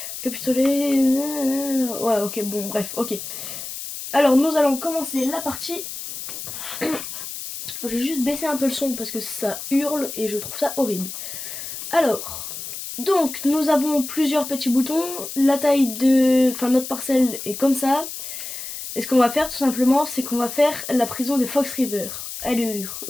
capitulé. Ouais, ok, bon, bref, ok. Alors, nous allons commencer la partie. Je vais juste baisser un peu le son parce que ça hurle et je trouve ça horrible. Alors, donc, nous avons plusieurs petits boutons. La taille de. Enfin, notre parcelle est comme ça. Et ce qu'on va faire, tout simplement, c'est qu'on va faire la prison de Fox River. Allure,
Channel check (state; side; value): noise; left; hiss, 8 dB below the sound